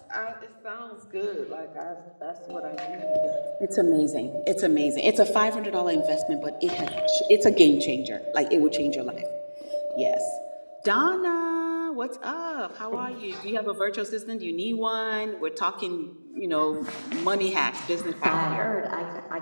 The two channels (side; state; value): both; inverted; correlation -1.00